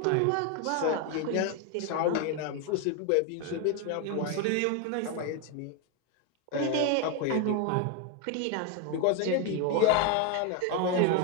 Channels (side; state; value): both; different; correlation 0.01